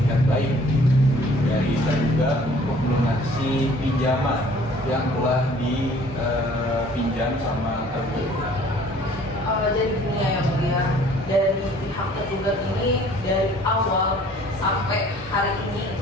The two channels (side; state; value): both; normal; correlation 0.54